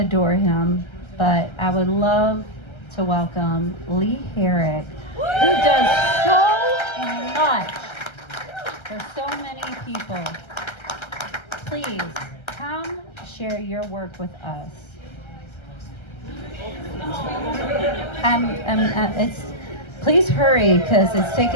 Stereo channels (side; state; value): right; late; 1.3 ms